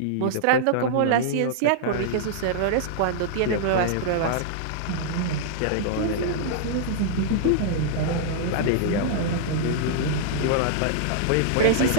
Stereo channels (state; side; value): different; both; correlation -0.01